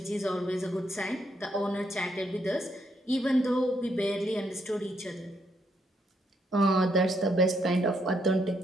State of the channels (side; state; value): both; normal; correlation 0.75